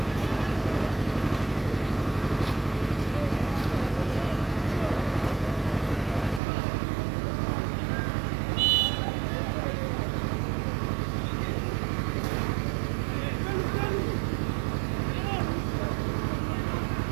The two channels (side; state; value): left; drops out; at 6.4 s